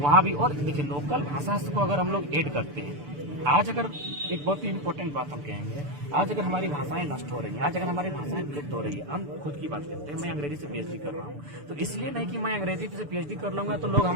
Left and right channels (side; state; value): left; late; 6.9 ms